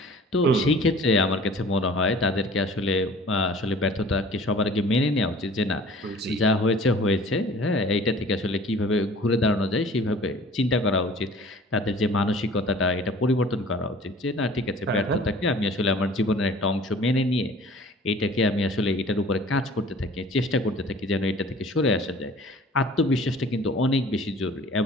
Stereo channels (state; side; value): normal; both; correlation 0.48